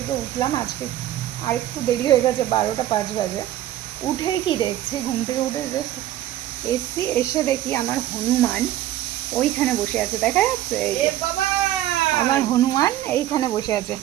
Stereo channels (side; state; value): left; quieter; 13.3 dB